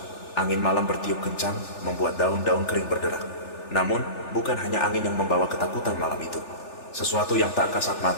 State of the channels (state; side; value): late; right; 3.4 ms